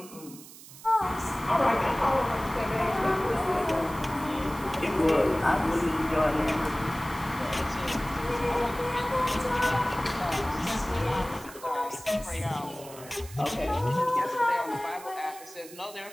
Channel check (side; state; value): right; noise; hiss, 17 dB below the sound